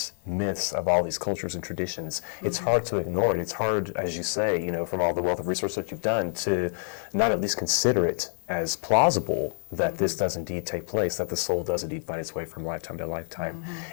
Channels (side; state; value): right; silent; 60 dB below the other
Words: myths of all these cultures and traditions, it's hard to ignore it. It's hard, as you say, from all the wealth of research that you've done, to not at least consider it as plausible that this does indeed take place, that the soul does indeed find its way from lifetime to lifetime.